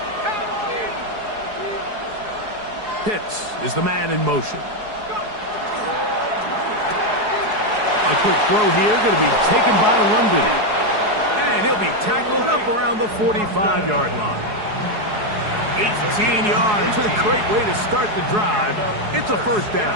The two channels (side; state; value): left; late; 4.7 ms